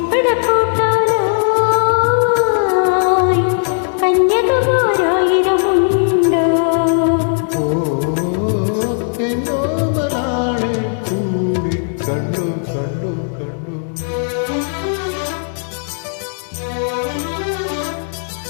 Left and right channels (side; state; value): right; silent; digital silence